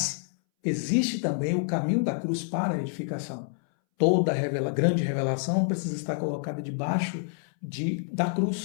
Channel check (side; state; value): right; silent; 60 dB below the other